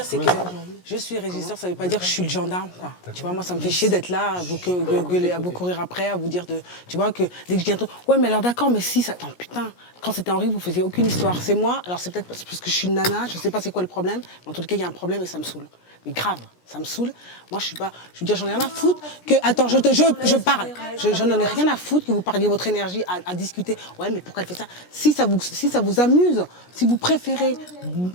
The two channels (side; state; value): right; late; 17 ms